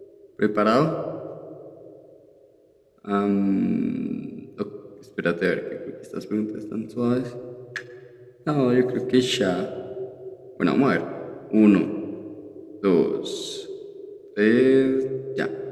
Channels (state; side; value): identical; both; correlation 1.00